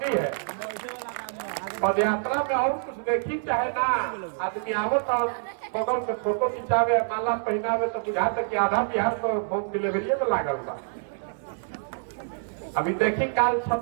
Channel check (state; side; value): silent; left; digital silence